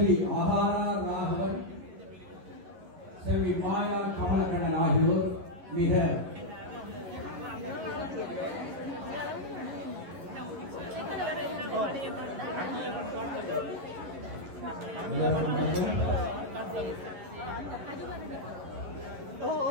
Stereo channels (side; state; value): left; late; 11 ms